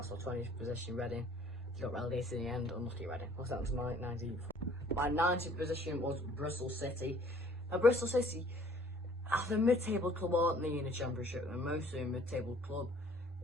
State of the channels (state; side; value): normal; both; correlation 0.55